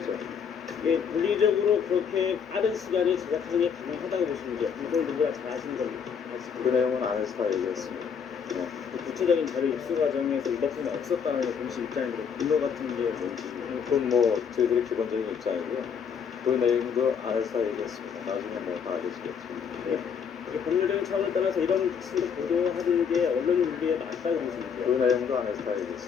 이게 물리적으로 그렇게 빠른 시간에 제작하는 게 가능하다고 보시는 게 그걸 누구나 잘 아시는 겁니까? 그 내용은 안에서 다 얘기했습니다. 네. 구체적인 자료 입수 과정에서 위법성이 없었다는 게 공식 입장인데 근거 같은 게 뭔지 그건 저희들의 기본적인 입장이고요. 그 내용도 안에서 다 얘기했습니다. 나중에 다 알려지겠죠. 네. 이게 법률적인 차원을 떠나서 이런 식으로 보도하는 게 언론 윤리에 맞다고 보시는데요? 그 내용도 안에서 다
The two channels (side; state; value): right; quieter; 7.0 dB